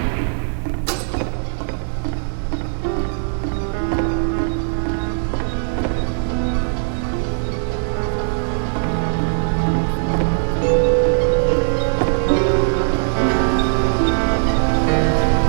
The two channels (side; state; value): left; silent; 61 dB below the other